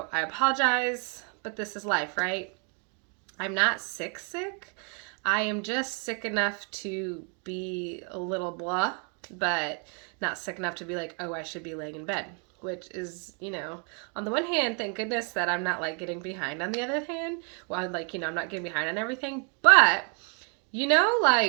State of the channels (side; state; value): left; quieter; 38.9 dB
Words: I apologize, but this is life, right? I'm not sick. I am just sick enough to be a little blah, but not sick enough to be like, oh, I should be laying in bed. Which is, on the one hand, thank goodness that I'm not getting behind. On the other hand, well, I'm not getting behind on everything, but